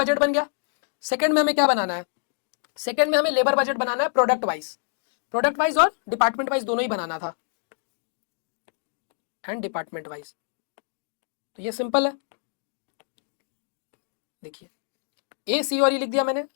बन गया। सेकंड में हमें क्या बनाना है, सेकंड में हमें लेबर बजट बनाना है, प्रोडक्ट वाइज और डिपार्टमेंट वाइज दोनों ही बनाना था, एंड डिपार्टमेंट वाइज। तो ये सिंपल है, देखिए ए सी और ई लिख दिया मैंने।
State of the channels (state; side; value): silent; right; digital silence